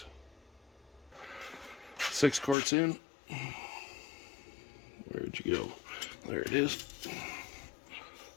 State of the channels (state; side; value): drops out; right; at 2.6 s